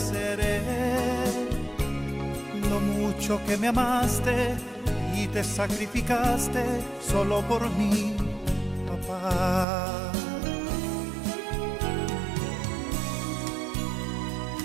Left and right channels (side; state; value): left; drops out; at 9.7 s